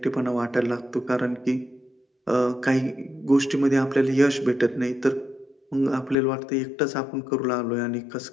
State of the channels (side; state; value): right; drops out; at 6.2 s